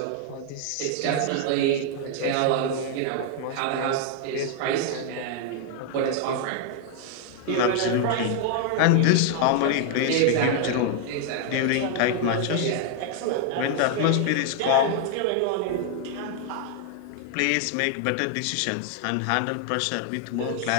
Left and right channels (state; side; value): different; both; correlation 0.00